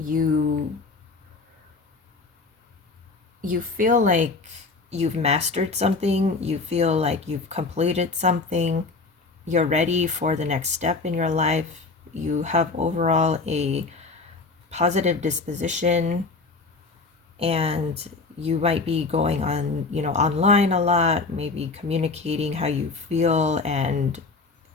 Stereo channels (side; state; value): right; quieter; 4.0 dB